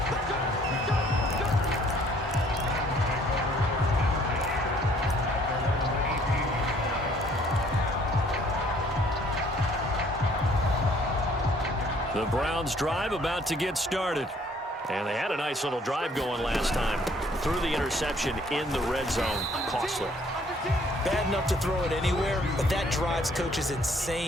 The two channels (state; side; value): normal; both; correlation 0.61